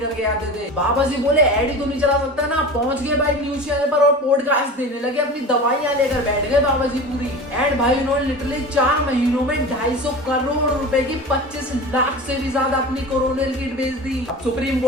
आते थे। बाबा जी बोले ऐड ही तो नहीं चला सकता ना, पहुंच गए भाई न्यूज चैनल पर और पॉडकास्ट देने लगे, अपनी दवाइयां लेकर बैठ गए बाबा जी पूरी। एंड भाई उन्होंने लिटरली 4 महीनों में 250 करोड़ रुपए की 25 लाख से भी ज्यादा अपनी कोरोना किट बेच दी। अब सुप्रीम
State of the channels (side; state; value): both; normal; correlation 0.33